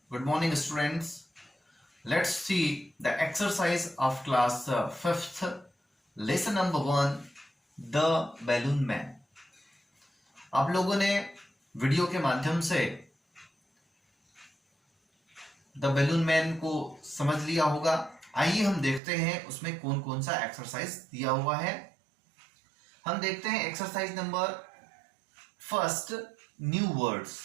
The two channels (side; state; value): left; drops out; at 19.0 s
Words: Good morning, students. Let's see the exercise of class 5th, lesson number 1, The Balloon Man. आप लोगों ने video के माध्यम से the balloon man को समझ लिया होगा। आइए हम देखते हैं उसमें कौन कौन सा एक्सरसाइज दिया हुआ है। हम देखते हैं exercise number first, new words,